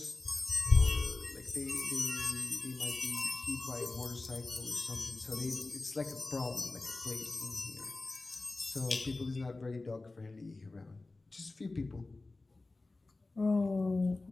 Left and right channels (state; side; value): quieter; right; 3.3 dB